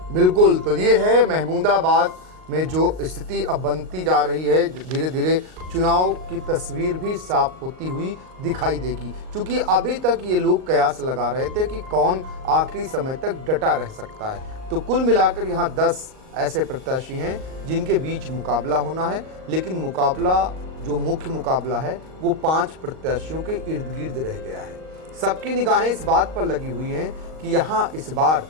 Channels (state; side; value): late; left; 38 ms